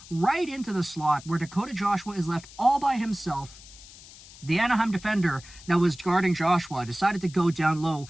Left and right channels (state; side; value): noise; left; hiss, 19 dB below the sound